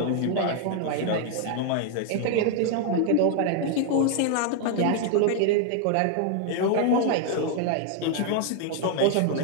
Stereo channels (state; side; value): different; both; correlation 0.00